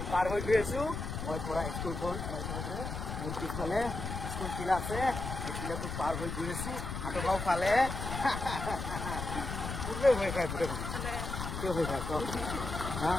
পাৰ হৈ গৈ আছোঁ মই পৰা স্কুলখন মোৰ পিছফালে স্কুল কিলা আছে এই কিলাটো পাৰ হৈ গৈ আছোঁ হাটগাঁও ফালে পূৰ্বে ভয় খায় পুৰে কিয় ভয় খায় কওক হা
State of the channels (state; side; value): noise; left; rumble, 5 dB below the sound